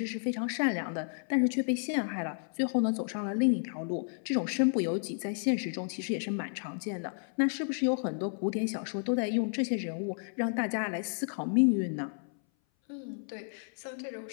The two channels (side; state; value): right; silent; 57 dB below the other